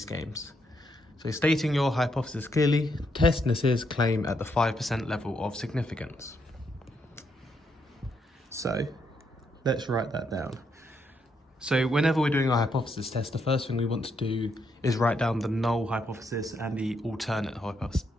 games. So stating your hypothesis clearly, test Nasir's claim at the 5% level of significance. So let's write that down. So whenever we're doing our hypothesis test, the first thing we want to do is write down the null hypothesis and the alternate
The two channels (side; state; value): both; normal; correlation 0.77